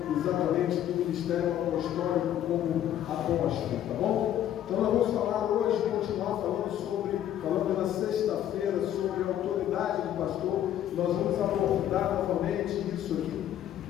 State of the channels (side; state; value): right; quieter; 11.2 dB